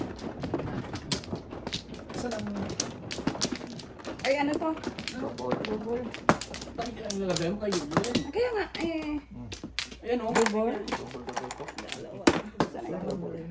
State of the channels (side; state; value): both; identical; correlation 1.00